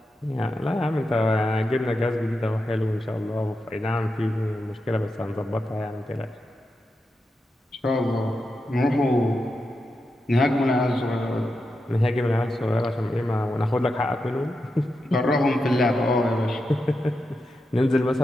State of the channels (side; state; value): both; normal; correlation 0.88